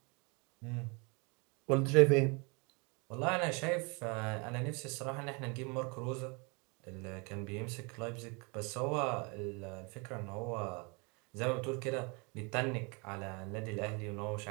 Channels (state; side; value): quieter; left; 30.8 dB